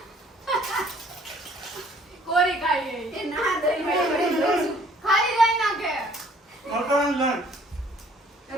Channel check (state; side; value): normal; both; correlation 0.59